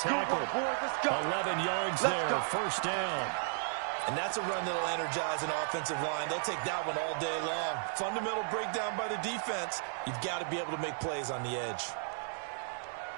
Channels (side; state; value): left; silent; digital silence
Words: 11 yards there, first down. And that's a run that'll energize an offensive line. They'll take that one all day long. Fundamental breakdown by the defense. You've got to be able to make plays on the edge.